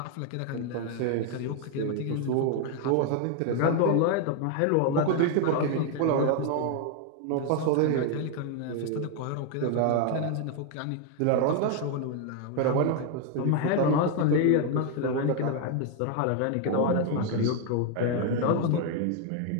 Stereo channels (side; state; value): both; different; correlation 0.01